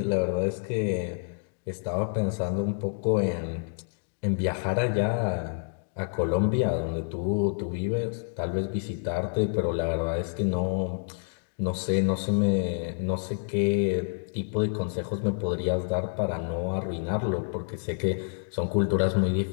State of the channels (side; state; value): right; silent; digital silence